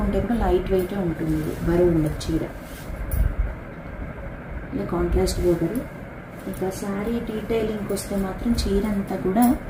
కూడా లైట్ వెయిట్ ఉంటుంది. ఇది బరువు ఉండదు చీర. ఇది కాంట్రాస్ట్ బోర్డర్. ఇక శారీ డీటెయిలింగ్కి వస్తే మాత్రం చీర అంతా కూడా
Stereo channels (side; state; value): both; identical; correlation 1.00